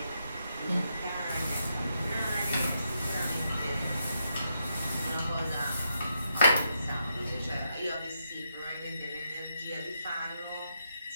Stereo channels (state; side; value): inverted; both; correlation -0.80